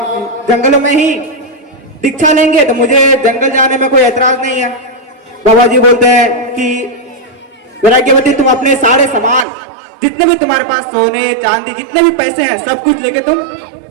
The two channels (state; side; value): drops out; left; at 9.5 s